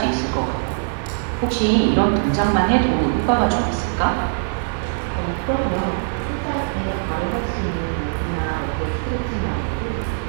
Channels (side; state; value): left; silent; digital silence